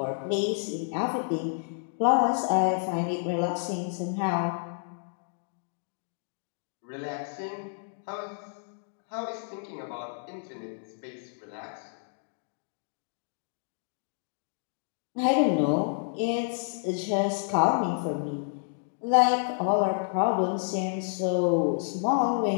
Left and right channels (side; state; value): right; silent; digital silence